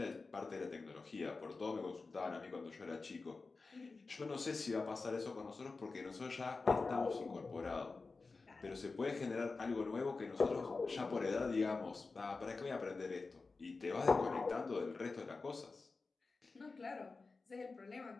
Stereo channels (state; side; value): quieter; right; 4.0 dB